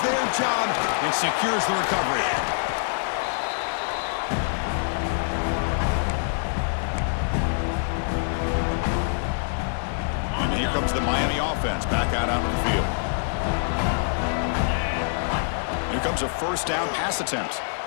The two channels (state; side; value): silent; right; digital silence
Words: their job and secures the recovery. comes the Miami offense back out onto the field. Here comes a first down pass attempt.